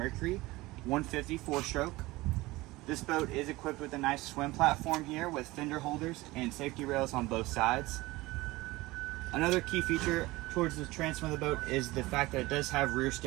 150 4-stroke. This boat is equipped with a nice swim platform here with fender holders and safety rails on both sides. Another key feature towards the transom of the boat is the fact that it does have rear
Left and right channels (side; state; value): left; quieter; 20.1 dB